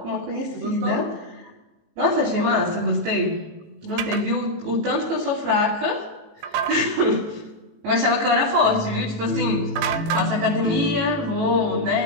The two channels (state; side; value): late; left; 19 ms